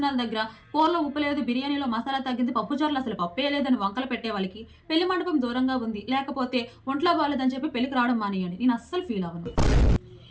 దగ్గర కూరలో ఉప్పు లేదు, బిర్యానీలో మసాలా తగ్గింది, పప్పుచారులు అసలు పప్పే లేదని వంకలు పెట్టే వాళ్ళకి పెళ్లి మండపం దూరంగా ఉంది, లేకపోతే ఒంట్లో బాగాలేదని చెప్పి పెళ్లికి రావడం మానేయండి. నేను అస్సలు ఫీల్ అవ్వను.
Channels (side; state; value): both; identical; correlation 1.00